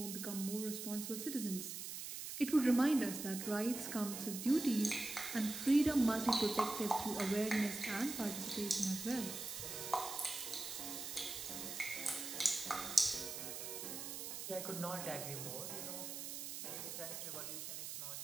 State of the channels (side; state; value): right; noise; hiss, 6 dB below the sound